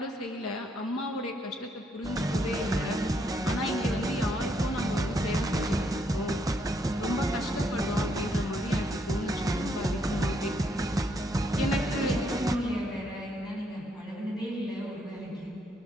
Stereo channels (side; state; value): both; normal; correlation 0.74